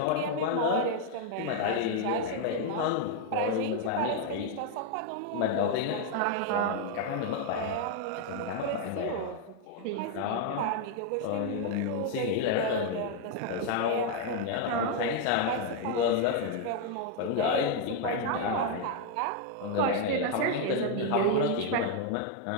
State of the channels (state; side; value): different; both; correlation 0.00